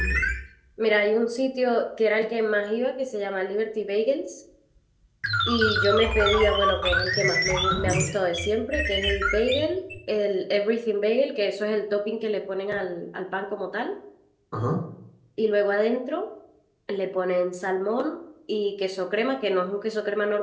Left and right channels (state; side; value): identical; both; correlation 1.00